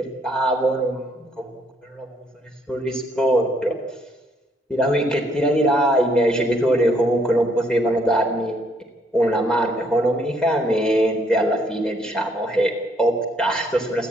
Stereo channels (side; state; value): both; normal; correlation 0.68